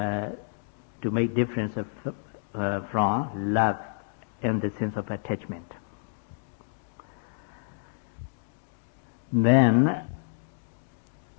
make difference from love in the sense of attachment. Then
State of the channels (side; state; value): right; silent; digital silence